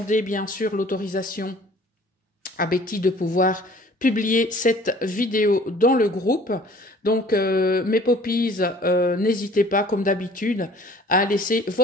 bien sûr l'autorisation à Betty de pouvoir publier cette vidéo dans le groupe. Donc, mes poppies, n'hésitez pas, comme d'habitude, à laisser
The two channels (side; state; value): both; normal; correlation 0.51